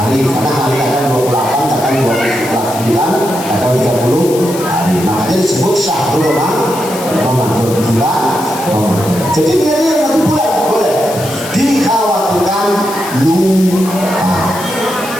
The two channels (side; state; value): left; noise; hiss, 12 dB below the sound